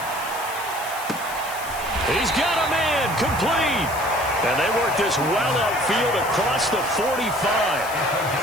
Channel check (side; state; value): left; noise; hiss, 13 dB below the sound